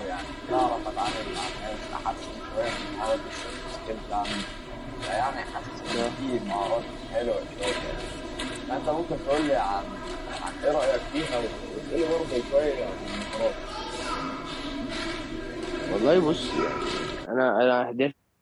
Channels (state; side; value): identical; both; correlation 1.00